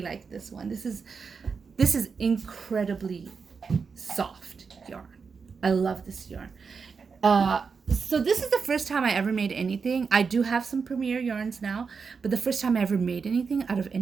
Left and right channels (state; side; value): quieter; left; 5.4 dB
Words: like this one. This is incredibly soft yarn. I love this yarn. So this is the first time I ever made anything. I do have some Premier yarns now, but the first time I ever made anything out of